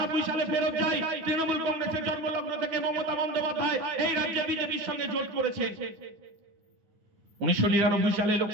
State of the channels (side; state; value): left; late; 9.5 ms